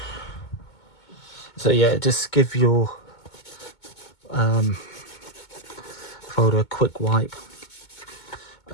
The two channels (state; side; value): late; right; 2.2 ms